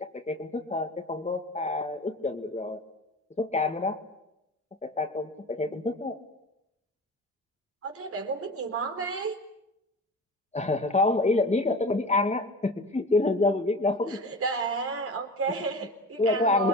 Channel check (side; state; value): both; normal; correlation 0.34